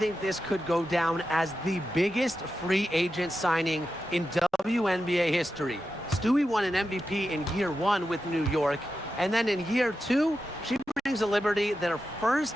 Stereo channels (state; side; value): normal; both; correlation 0.90